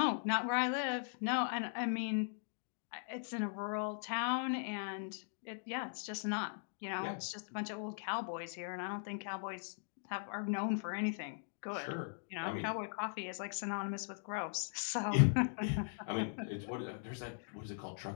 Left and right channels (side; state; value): right; silent; digital silence